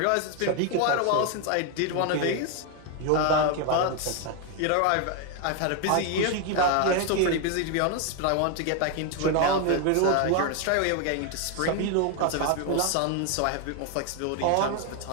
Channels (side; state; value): both; different; correlation 0.01